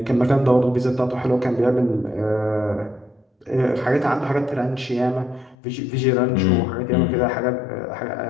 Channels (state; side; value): drops out; right; at 5.6 s